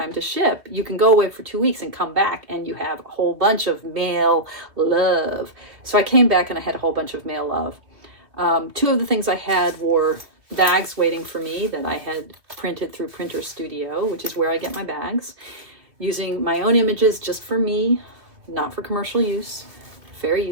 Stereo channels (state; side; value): late; left; 2.6 ms